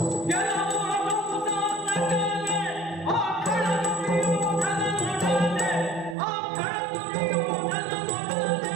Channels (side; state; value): left; drops out; at 6.2 s